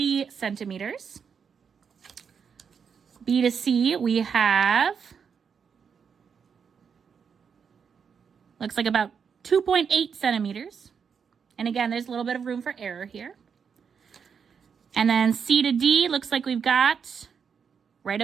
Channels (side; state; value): left; quieter; 6.6 dB